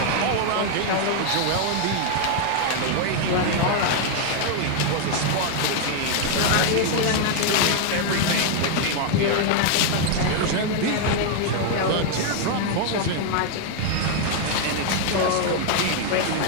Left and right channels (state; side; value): different; both; correlation 0.00